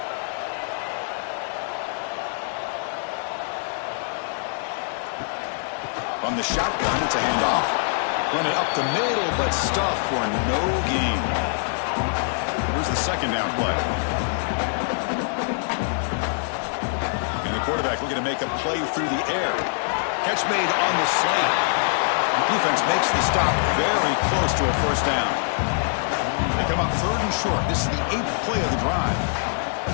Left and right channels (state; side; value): silent; right; digital silence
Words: From the shotgun, it's a handoff. Run it up the middle, but stuffed for no gain. Here's the second down play. And the quarterback looking to make a play through the air. Catch made on the slant. The defense makes the stop very close to a first down. They come up third and short. This is the 8th play of the drive.